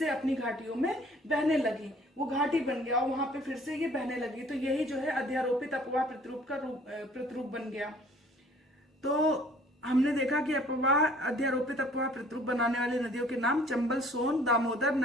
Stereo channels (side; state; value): both; normal; correlation 0.55